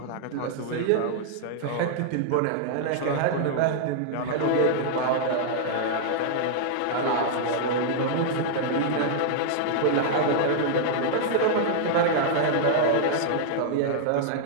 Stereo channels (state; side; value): different; both; correlation -0.01